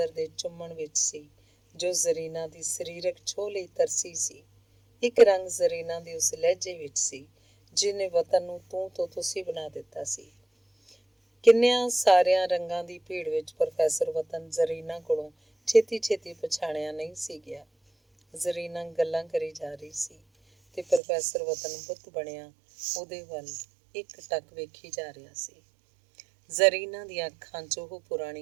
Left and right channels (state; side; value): drops out; left; at 21.0 s